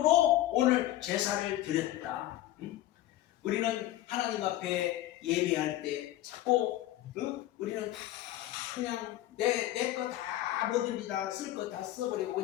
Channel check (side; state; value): right; quieter; 14.4 dB